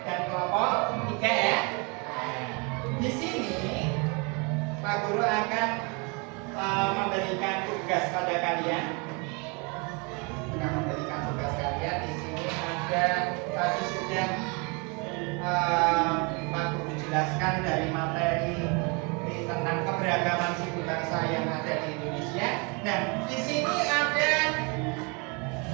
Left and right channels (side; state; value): left; quieter; 31.3 dB